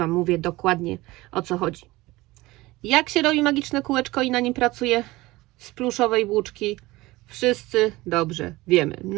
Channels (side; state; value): left; quieter; 19.8 dB